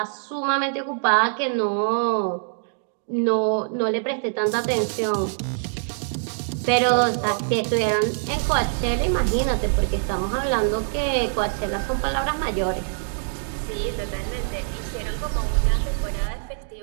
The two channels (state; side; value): silent; left; digital silence